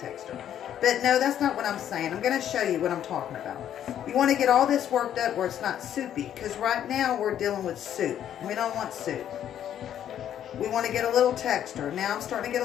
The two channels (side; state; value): right; quieter; 10.3 dB